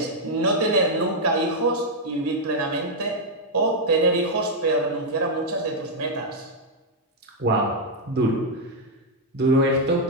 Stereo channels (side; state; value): both; normal; correlation -0.02